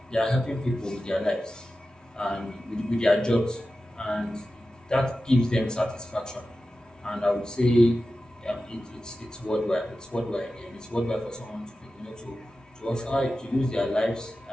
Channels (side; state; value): both; normal; correlation 0.93